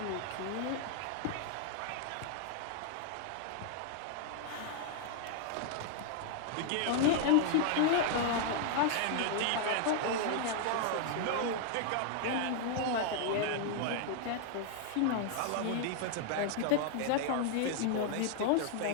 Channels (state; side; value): different; both; correlation 0.00